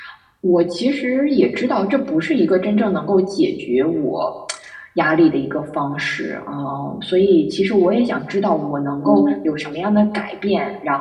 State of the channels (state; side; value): identical; both; correlation 1.00